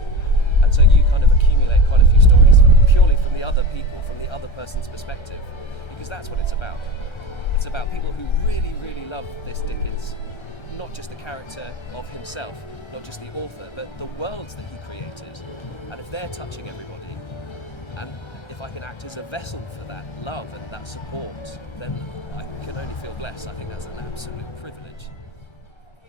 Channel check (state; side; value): late; right; 1.3 ms